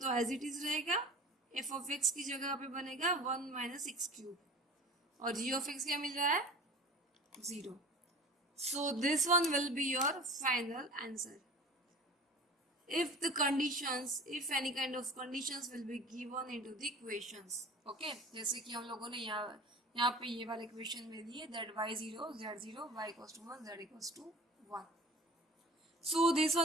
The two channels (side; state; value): both; normal; correlation 0.40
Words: तो एज इट इज रहेगा, f of x की जगह पे बनेगा 1 माइनस एक्स क्यूब, और g of x क्या मिल रहा है, 0. So this one will be your final answer. If the conditions, if any kind of conditions will be given into the equations. Okay, जैसे कि हम लोगों ने यहाँ पे ये वाले इक्वेशन में दिए that y0 z0 y equals to 1 z equals to 1. So this